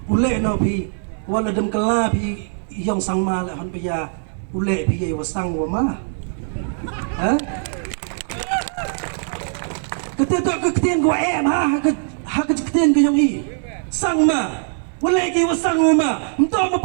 ule no phi wala dem kala phi yong sangma le han pya ule phi ye wasang wa ma ha kete to ketien ko em ha ketien ko yong i sangma wala ki wasang uma mto mo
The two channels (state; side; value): silent; left; 59 dB below the other